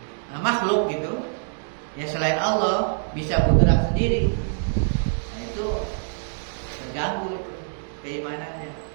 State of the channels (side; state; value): left; silent; digital silence